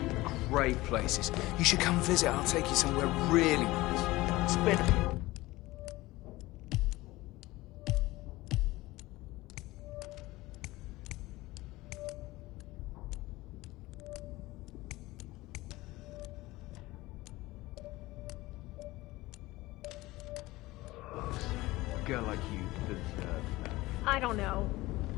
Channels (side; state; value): right; quieter; 19.2 dB